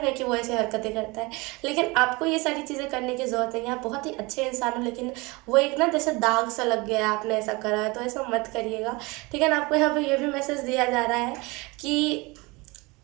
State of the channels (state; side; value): quieter; left; 25.1 dB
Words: है कि वो ऐसी हरकतें करता है, लेकिन आपको ये सारी चीज़ें करने की ज़रूरत नहीं है। आप बहुत ही अच्छे इंसान हो, लेकिन वो एक ना जैसे दाग सा लग गया है, आपने ऐसा करा है, तो ऐसा मत करिएगा, ठीक है ना। आपको यहाँ पे ये भी मैसेज दिया जा रहा है कि